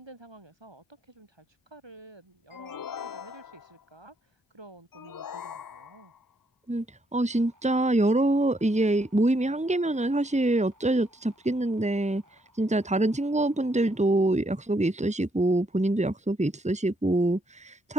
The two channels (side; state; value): both; normal; correlation 0.74